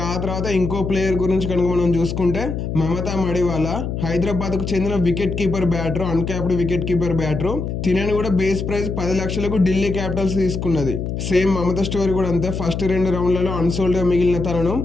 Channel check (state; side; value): noise; left; hum, 4 dB below the sound